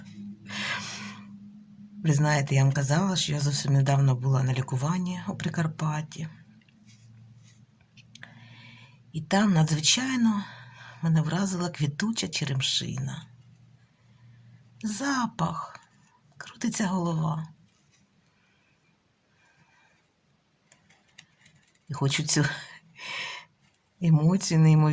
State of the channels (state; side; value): identical; both; correlation 1.00